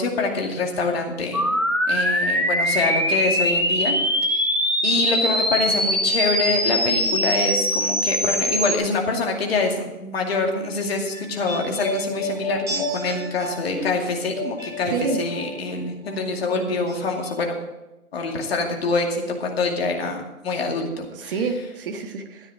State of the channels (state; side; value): normal; both; correlation 0.14